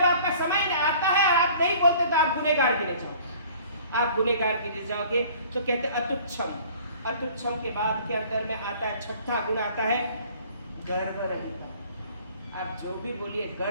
आपका समय आता है और आप नहीं बोलते तो आप गुनहगार गिने जाओगे। आप गुनहगार गिने जाओगे। तो कहते अतुच्छम, अतुच्छम के बाद के अंदर में आता है छठा गुण, आता है गर्व रहित। आप जो भी बोलिए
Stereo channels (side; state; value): both; inverted; correlation -0.51